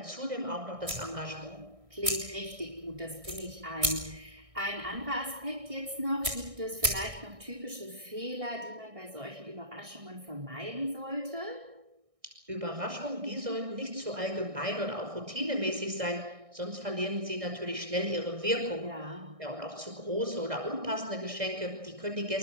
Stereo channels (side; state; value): left; late; 1.6 ms